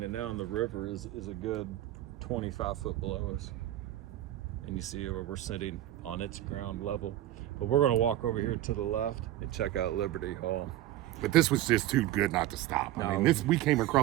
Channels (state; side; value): quieter; left; 14.1 dB